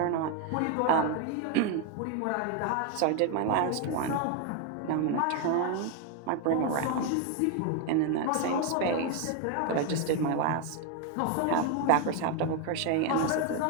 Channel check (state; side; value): different; both; correlation 0.01